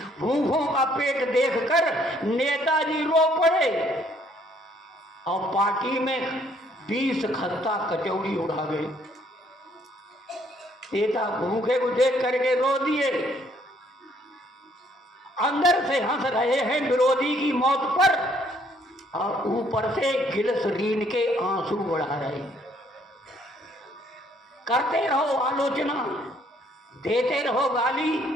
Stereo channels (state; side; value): normal; both; correlation 0.65